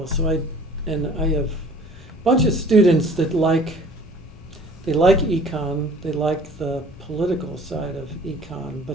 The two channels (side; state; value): both; normal; correlation 0.50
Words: so I have a bunch of students that like econ, they like the political side of econ,